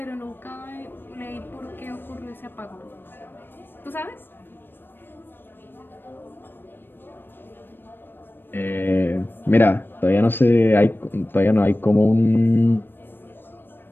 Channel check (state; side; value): late; right; 0.097 ms